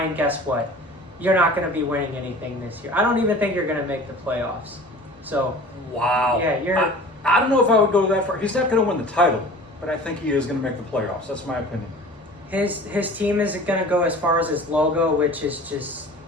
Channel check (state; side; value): normal; both; correlation 0.42